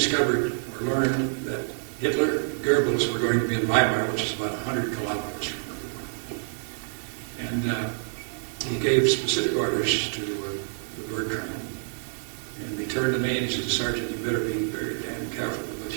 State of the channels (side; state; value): left; silent; digital silence